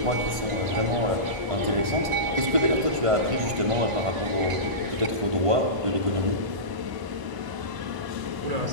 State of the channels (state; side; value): late; left; 1.5 ms